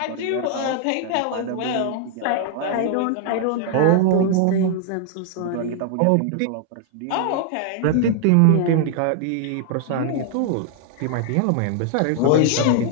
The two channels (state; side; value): different; both; correlation 0.00